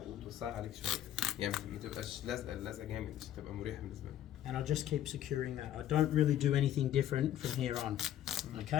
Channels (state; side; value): quieter; right; 11.7 dB